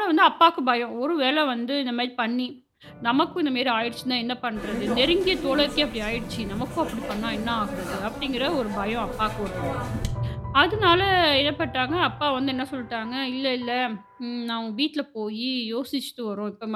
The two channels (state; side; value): identical; both; correlation 1.00